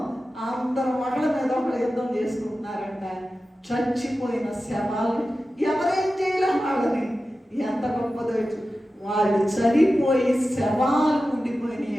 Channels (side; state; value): both; normal; correlation 0.93